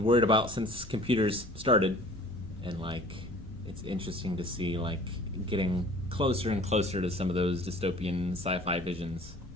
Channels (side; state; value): both; normal; correlation 0.48